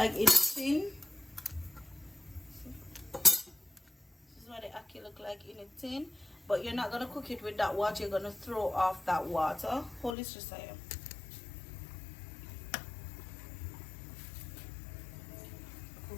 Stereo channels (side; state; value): right; drops out; at 10.2 s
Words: in tin. This is what the ackee look like in a tin. But you're not gonna cook it with that water. You're gonna throw off that water. Hold this just here.